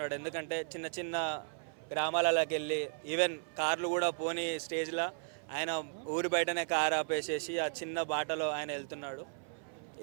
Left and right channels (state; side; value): silent; left; 54 dB below the other